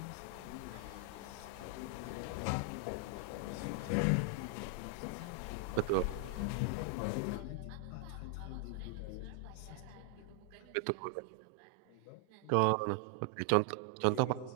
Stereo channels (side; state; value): both; different; correlation 0.00